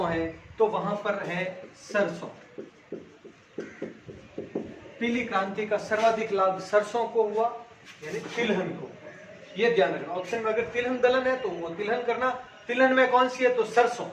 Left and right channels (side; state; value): both; identical; correlation 1.00